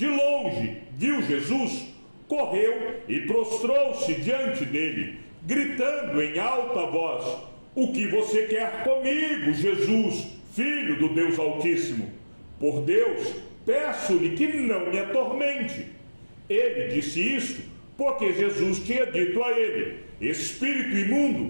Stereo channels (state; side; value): inverted; both; correlation -1.00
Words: longe, viu Jesus, correu e prostrou-se diante dele, gritando em alta voz: o que você quer comigo, Jesus, Filho do Deus Altíssimo? Por Deus, peço-lhe que não me atormente. Ele disse isto porque Jesus tinha dito a ele: espírito